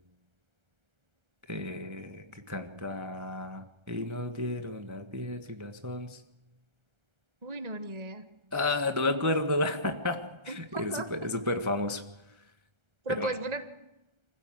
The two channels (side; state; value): left; late; 1.3 ms